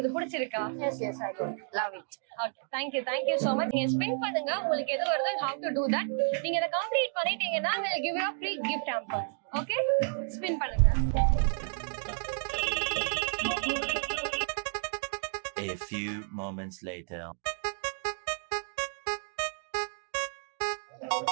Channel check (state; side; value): silent; left; 57 dB below the other